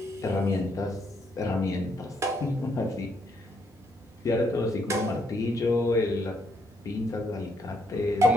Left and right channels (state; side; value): normal; both; correlation 0.74